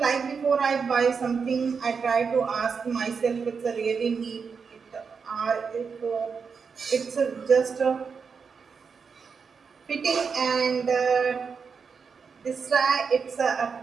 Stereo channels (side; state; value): left; quieter; 5.7 dB